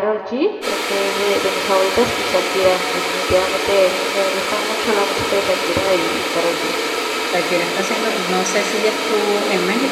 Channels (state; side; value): identical; both; correlation 1.00